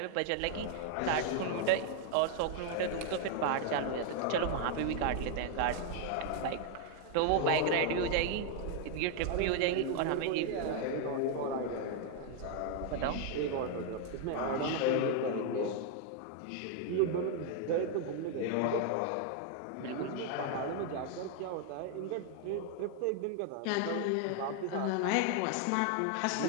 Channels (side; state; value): both; different; correlation 0.00